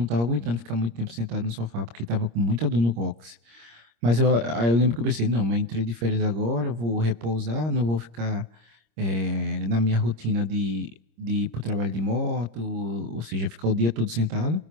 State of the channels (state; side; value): late; left; 26 ms